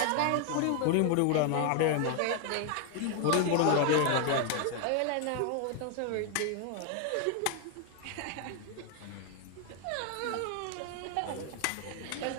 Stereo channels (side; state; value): both; different; correlation 0.00